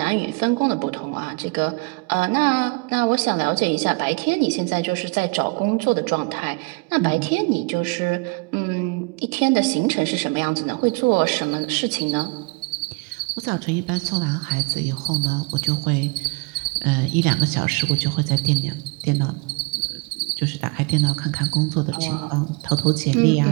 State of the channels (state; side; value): quieter; left; 28.1 dB